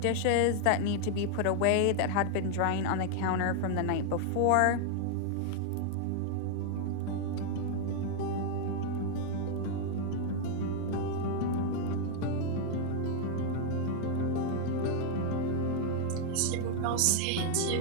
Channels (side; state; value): both; different; correlation 0.00